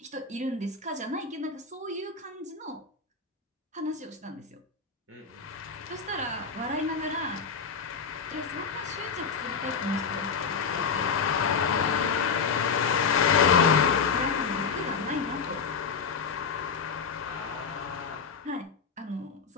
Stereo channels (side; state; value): right; quieter; 5.7 dB